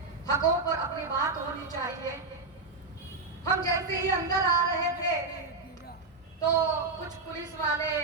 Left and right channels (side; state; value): left; quieter; 3.7 dB